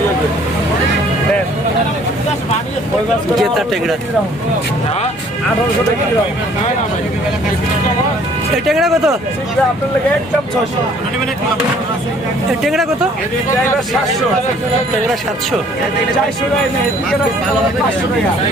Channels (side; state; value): both; normal; correlation 0.57